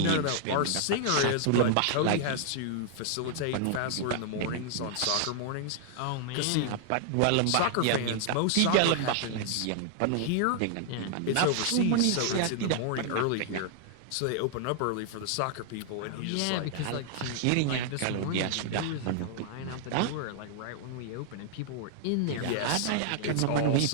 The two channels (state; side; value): different; both; correlation 0.00